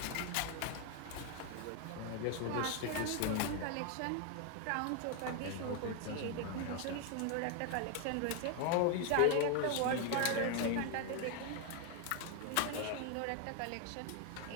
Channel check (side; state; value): both; different; correlation 0.01